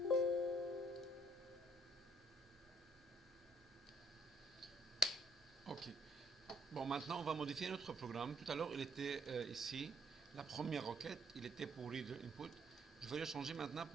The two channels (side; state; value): both; normal; correlation 0.66